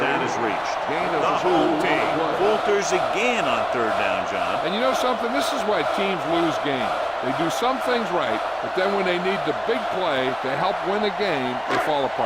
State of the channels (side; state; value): both; identical; correlation 1.00